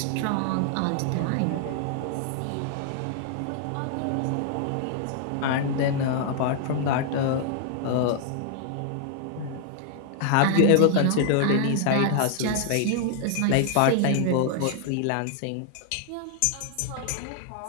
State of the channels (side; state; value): both; different; correlation 0.00